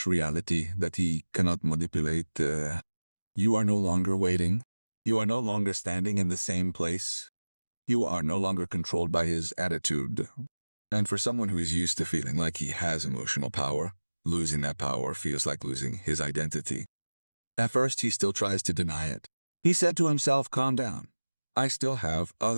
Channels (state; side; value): inverted; both; correlation -1.00